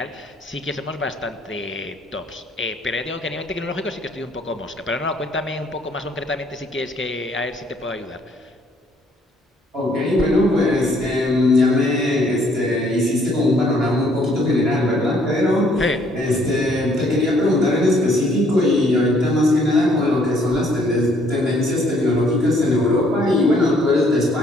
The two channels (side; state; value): both; normal; correlation 0.64